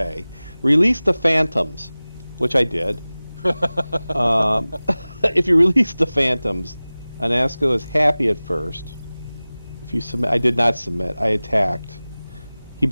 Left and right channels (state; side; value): inverted; both; correlation -0.99